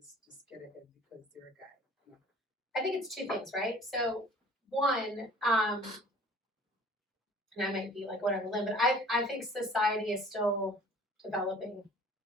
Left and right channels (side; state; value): both; normal; correlation 0.49